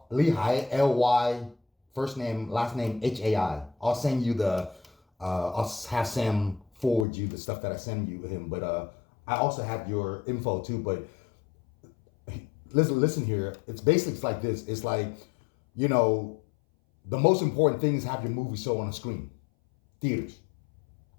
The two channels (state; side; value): drops out; right; at 7.1 s